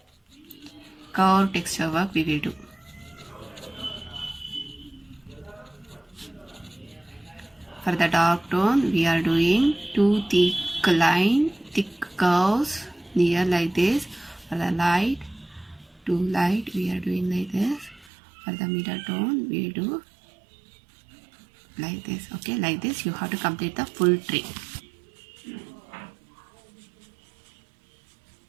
curve texture work we will do. For the dark tone, we are doing two thick curves near like this. For the light, two light, we are doing like this. For the middle tone, we do like this. Okay, like this you have to complete the full tree.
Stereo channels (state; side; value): drops out; left; at 18.1 s